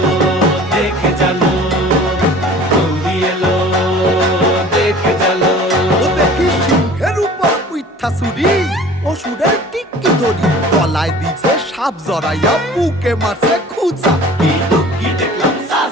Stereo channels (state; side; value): normal; both; correlation 0.45